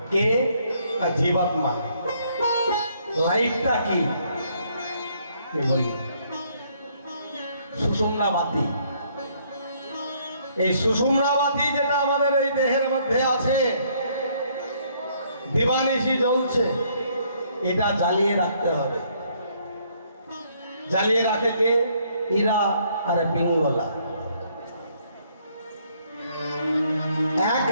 কে? না জীবাত্মা। লাইটটা কি বলি? সুষুম্না বাতি। এই সুষুম্না বাতি যেটা আমাদের এই দেহের মধ্যে আছে, দিবানিশি জ্বলছে, এটা জ্বালিয়ে রাখতে হবে। জ্বালিয়ে রাখে কে? ইরা আর পিঙ্গলা। এক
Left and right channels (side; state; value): both; inverted; correlation -0.67